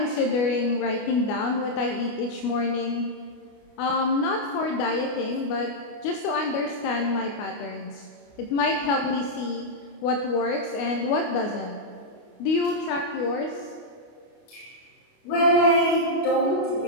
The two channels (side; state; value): right; late; 29 ms